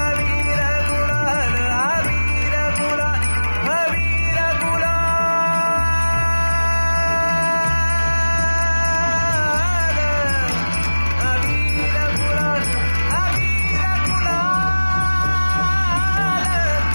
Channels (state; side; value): inverted; both; correlation -1.00